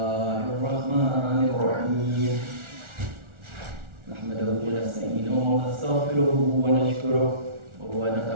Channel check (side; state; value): left; late; 1.4 ms